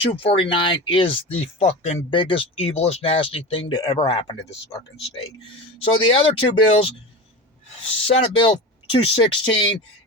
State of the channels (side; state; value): both; normal; correlation 0.28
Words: is the fucking biggest, evilest, nasty thing to ever happen to this fucking state. So the other 2 bills, Senate Bill 216,